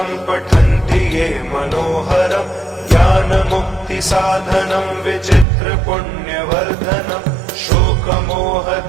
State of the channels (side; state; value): left; drops out; at 5.5 s